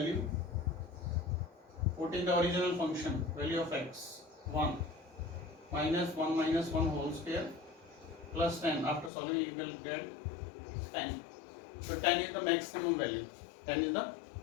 put in the original function value of x 1 minus 1 whole square plus 10. After solving you will get 10. So 10 is the maximum value. 10 is the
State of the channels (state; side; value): drops out; right; at 9.1 s